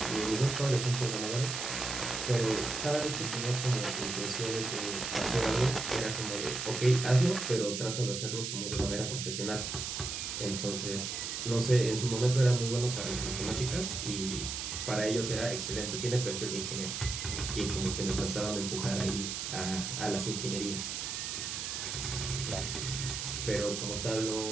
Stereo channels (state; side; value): noise; right; hiss, 4 dB below the sound